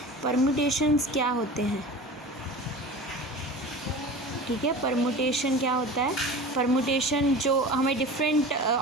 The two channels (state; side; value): normal; both; correlation 0.35